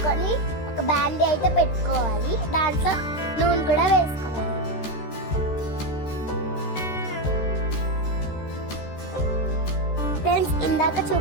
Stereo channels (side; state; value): right; late; 13 ms